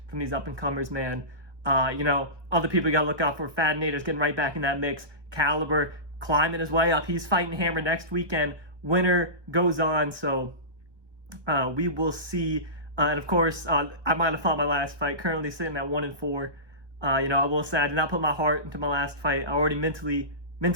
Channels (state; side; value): late; left; 1.2 ms